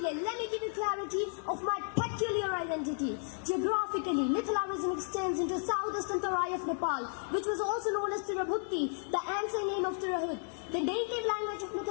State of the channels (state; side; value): silent; right; 56 dB below the other